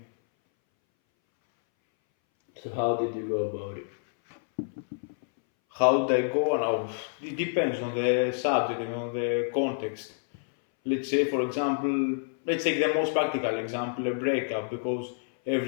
So how did you go about it? How did I go? Now, it depends on the subject and on the context. Let's say, for example, let's take the most practical example, a breakup, because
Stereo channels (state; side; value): silent; right; 59 dB below the other